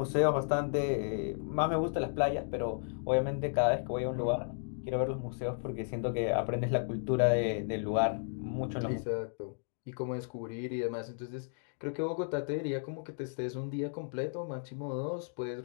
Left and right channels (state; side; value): silent; right; digital silence